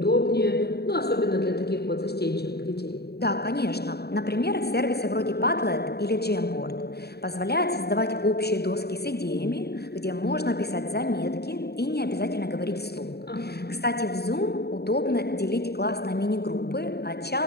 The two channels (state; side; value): late; right; 0.47 ms